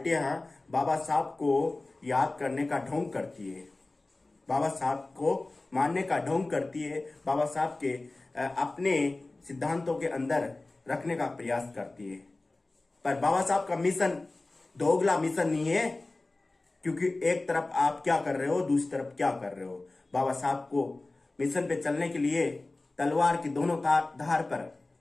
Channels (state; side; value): quieter; right; 3.1 dB